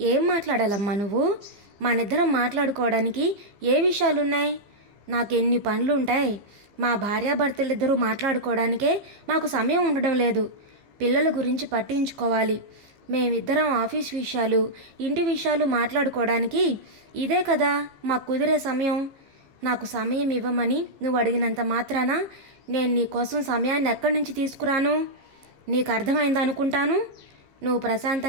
ఏం మాట్లాడాలమ్మా నువ్వు? మనిద్దరం మాట్లాడుకోవడానికి ఏ విషయాలున్నాయి? నాకెన్ని పనులుంటాయి. మా భార్యాభర్తలిద్దరూ మాట్లాడుకోవడానికే మాకు సమయం ఉండడం లేదు. పిల్లల గురించి పట్టించుకోవాలి. మేమిద్దరం ఆఫీస్ విషయాలు, ఇంటి విషయాలు మాట్లాడుకోవడానికి ఇదే కదా మాకు కుదిరే సమయం. నాకు సమయం ఇవ్వమని నువ్వు అడిగినంత మాత్రాన నేను నీ కోసం సమయాన్ని ఎక్కడి నుంచి తీసుకురాను? నీకు అర్థమైందనుకుంటాను. నువ్వు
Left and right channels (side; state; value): left; late; 15 ms